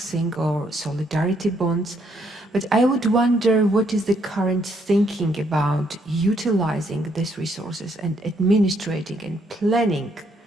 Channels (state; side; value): normal; both; correlation 0.71